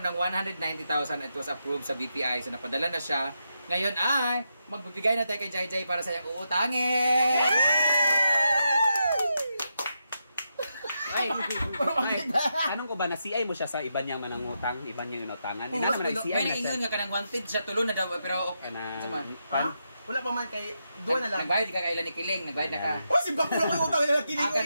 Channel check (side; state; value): both; inverted; correlation -0.84